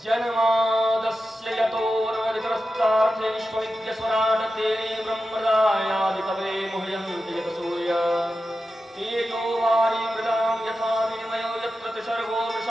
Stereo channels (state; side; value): normal; both; correlation 0.91